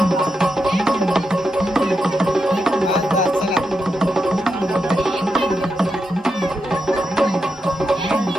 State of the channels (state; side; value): normal; both; correlation 0.86